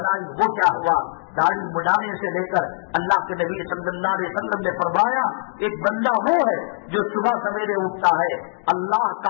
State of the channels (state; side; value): silent; right; digital silence